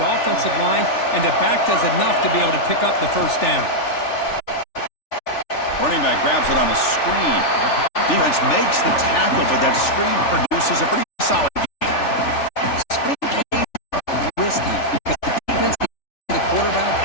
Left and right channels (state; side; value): late; right; 3.4 ms